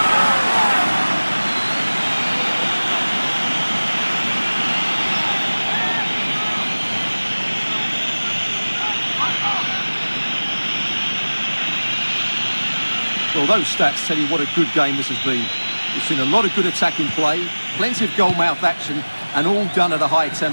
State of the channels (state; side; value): inverted; both; correlation -1.00